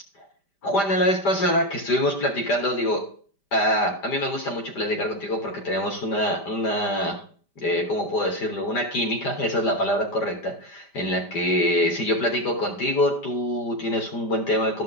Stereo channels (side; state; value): right; late; 5.1 ms